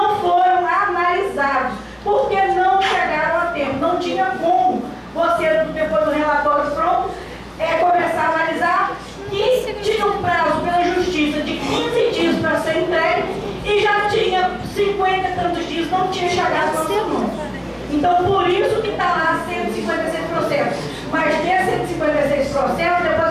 foram analisados, porque não chegaram a tempo. Não tinha como você, depois do relatório pronto, começar a analisar, e tinha um prazo pela justiça de 15 dias para ser entregue, e já tinha 50 e tantos dias, não tinha chegado ao seu nome. Então, por isso que está lá 156 processos. Mas desses 156 processos,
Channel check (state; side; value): identical; both; correlation 1.00